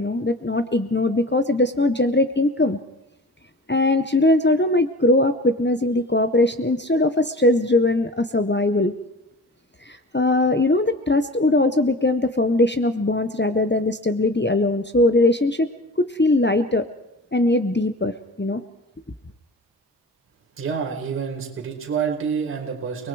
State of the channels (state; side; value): normal; both; correlation 0.38